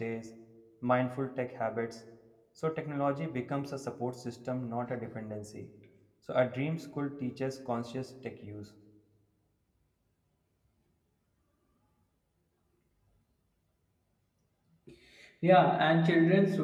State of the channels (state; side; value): identical; both; correlation 1.00